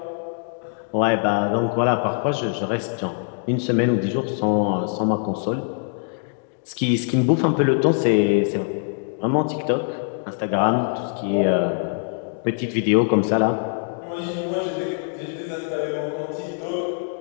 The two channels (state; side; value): silent; right; 60 dB below the other